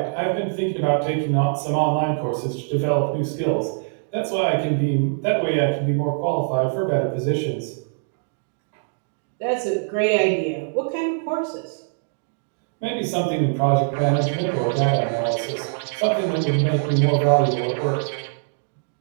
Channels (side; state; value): left; silent; digital silence